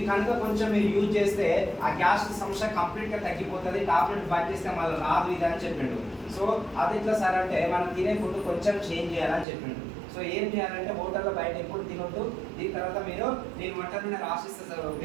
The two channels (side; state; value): left; drops out; at 9.5 s